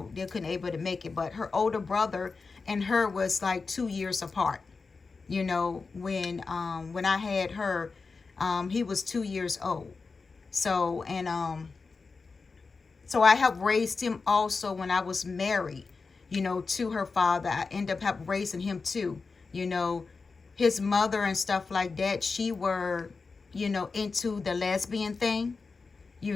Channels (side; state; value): right; quieter; 4.4 dB